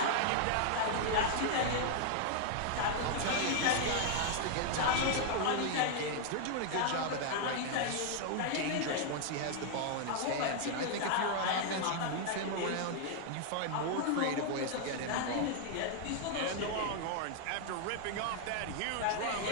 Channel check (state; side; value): different; both; correlation 0.00